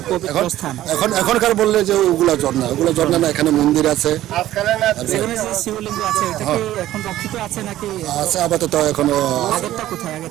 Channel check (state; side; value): quieter; left; 13.9 dB